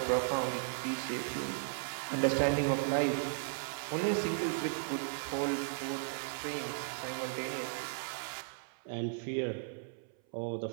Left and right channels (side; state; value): left; silent; 54 dB below the other